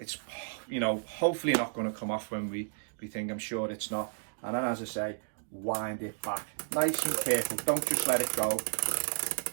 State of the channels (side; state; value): left; silent; digital silence